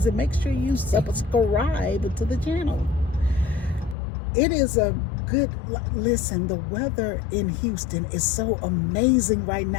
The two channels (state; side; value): drops out; right; at 4.0 s